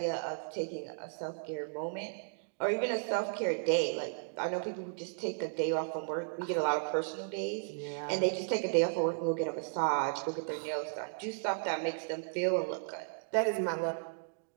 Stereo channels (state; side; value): silent; left; digital silence